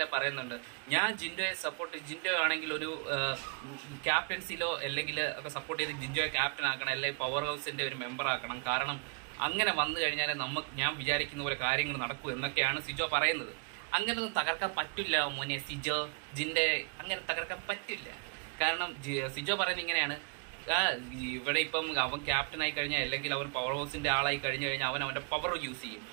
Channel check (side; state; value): left; quieter; 37.2 dB